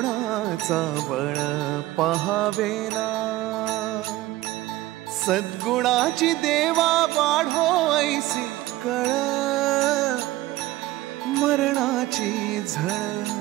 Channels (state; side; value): quieter; left; 17.1 dB